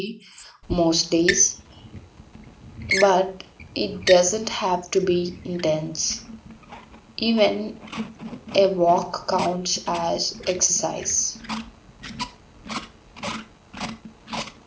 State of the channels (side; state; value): both; identical; correlation 1.00